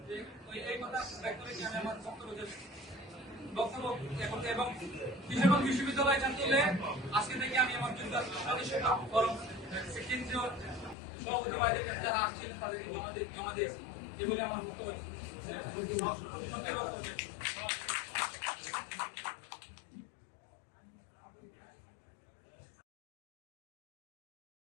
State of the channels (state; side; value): drops out; right; at 11.0 s